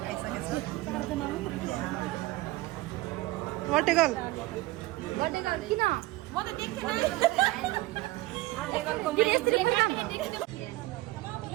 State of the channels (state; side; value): quieter; left; 18.9 dB